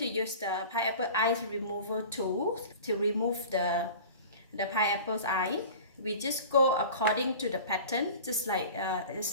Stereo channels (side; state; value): both; inverted; correlation -0.39